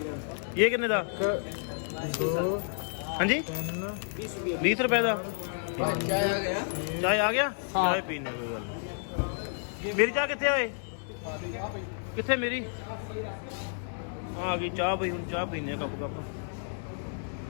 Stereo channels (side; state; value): right; silent; digital silence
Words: ਇਹ ਕਿੰਨੇ ਦਾ? 2 ਹਾਂਜੀ 20 ਰੁਪਏ ਦਾ। ਚਾਹ ਆ ਗਿਆ। ਚਾਹ ਆ ਗਿਆ? ਹਾਂ। ਚਾਹ ਪੀਣੇ ਕੋਈ ਗੱਲ ਨਹੀਂ। ਮੇਰੀ ਚਾਹ ਕਿੱਥੇ ਓਏ? ਕਿੱਥੇ ਮੇਰੀ? ਆ ਗਈ ਚਾਹ ਬਈ। ਹੁਣ ਚਾਹ ਪੀਨੇ ਆ ਕੱਪ।